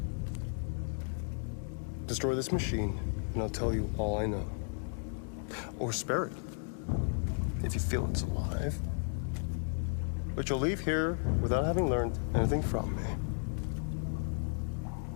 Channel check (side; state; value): right; silent; 55 dB below the other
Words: Destroy this machine, and I'll tell you all I know. Or spare it, if you feel it's alive. But you'll leave here without having learned anything from me.